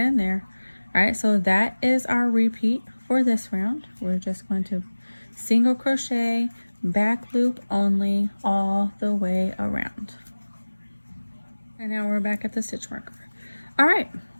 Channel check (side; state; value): both; inverted; correlation -1.00